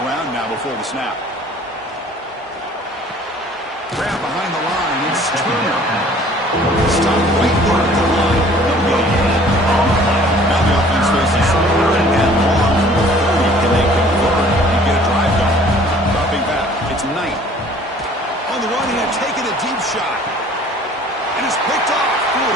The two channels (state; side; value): normal; both; correlation 0.52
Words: now before the snap. Grab behind the line. It's Turner. Stop right there at the line. Now the offense faces third and long. Can they convert and get a drive going? Dropping back. It's Knight. On the run, he had taken a deep shot. And it's picked off. Threw it